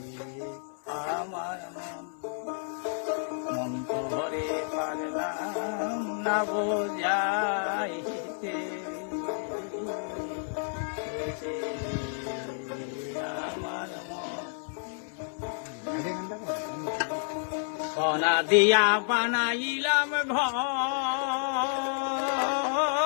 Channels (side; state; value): right; silent; 58 dB below the other